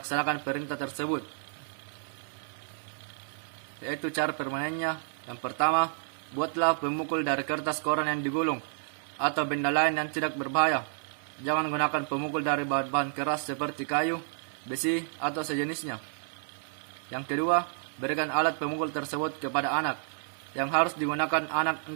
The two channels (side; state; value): left; silent; 58 dB below the other